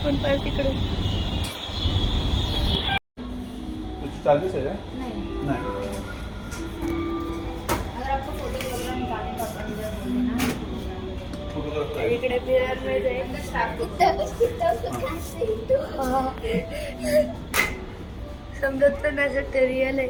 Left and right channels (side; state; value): both; identical; correlation 1.00